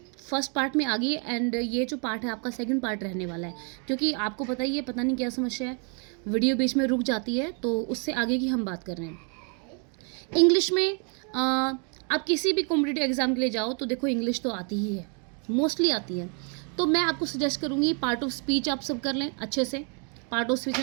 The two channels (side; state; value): left; quieter; 39.1 dB